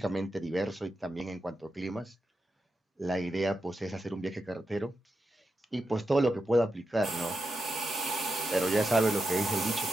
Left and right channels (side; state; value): both; normal; correlation 0.87